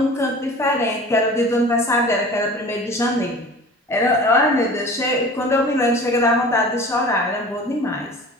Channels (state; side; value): normal; both; correlation 0.40